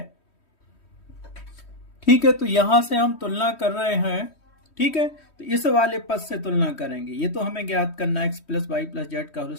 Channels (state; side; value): late; right; 3.1 ms